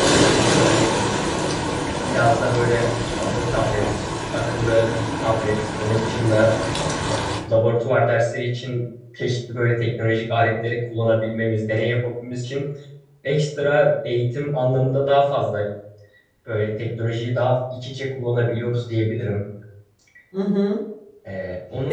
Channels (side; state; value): both; identical; correlation 1.00